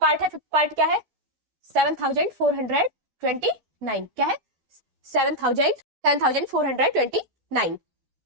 है। फिफ्थ पार्ट क्या है? 7429। क्या है? 7429।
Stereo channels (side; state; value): left; late; 12 ms